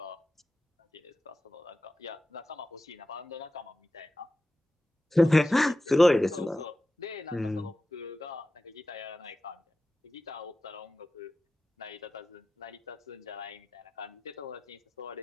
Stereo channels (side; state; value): both; normal; correlation 0.93